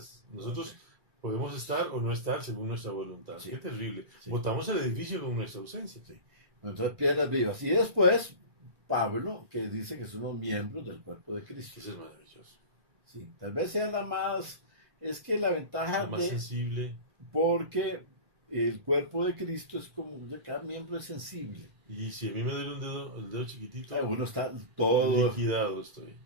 Nosotros podemos estar o no estar según nuestra voluntad. Sí. Qué terrible. Sí. Botamos el edificio con nuestra ausencia. Sí. Entonces, piedras vivas. Y después, Pablo, que dice que son los miembros del cuerpo de Cristo. Eso es maravilloso. Sí, tal vez sea la más. Es que la ventaja. La más sensible. Porque el cuerpo de Cristo es como. Cada miembro es sensible. Y si a mí me duele el dedo chiquitito. Uno está todo. Liquidado estoy.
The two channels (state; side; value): late; left; 1.5 ms